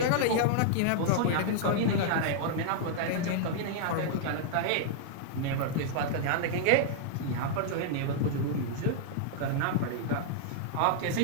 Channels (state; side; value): different; both; correlation -0.01